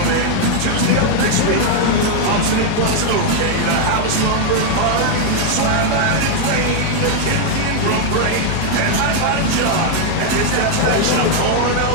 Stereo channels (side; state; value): both; different; correlation 0.00